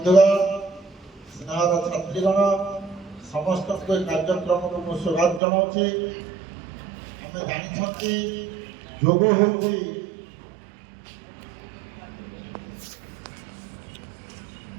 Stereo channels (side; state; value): left; drops out; at 5.4 s